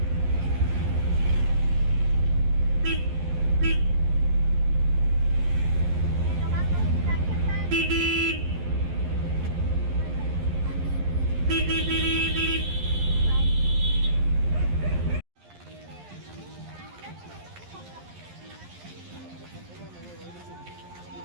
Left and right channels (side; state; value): left; late; 11 ms